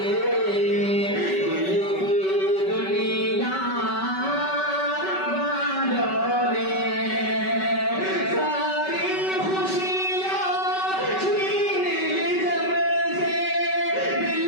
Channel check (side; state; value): right; late; 5.3 ms